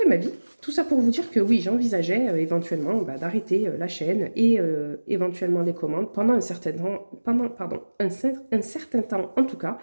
ma vie. Tout ça pour vous dire que oui, j'envisageais éventuellement d'arrêter la chaîne et éventuellement les commandes pendant un certain temps, un certain temps en tout cas.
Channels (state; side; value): inverted; both; correlation -1.00